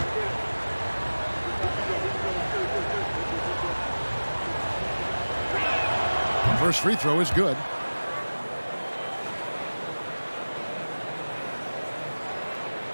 First free throw is good.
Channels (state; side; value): inverted; both; correlation -1.00